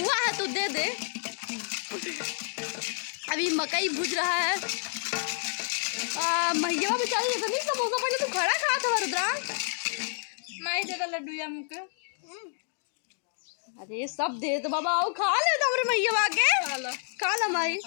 है तो दे दे। अभी मकई भूज रहा है। मैया बेचारी तो नहीं समोसा, पहले तू खड़ा खा था रुद्रा। मैं दे लड्डू या मुके। अरे सब दे तो बाबा, आओ खा ले तो मेरे मैया आके खा लो। माई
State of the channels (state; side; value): silent; right; digital silence